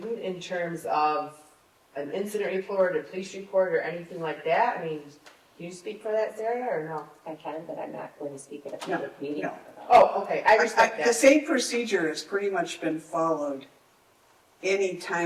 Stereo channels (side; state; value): both; identical; correlation 1.00